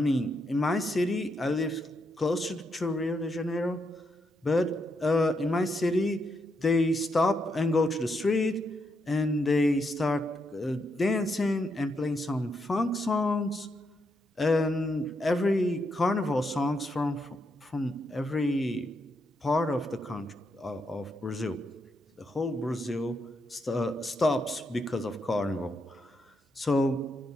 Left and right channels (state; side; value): normal; both; correlation 0.80